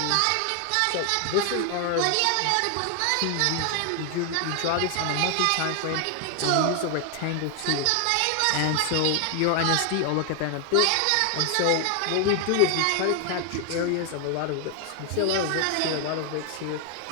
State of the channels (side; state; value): both; different; correlation 0.01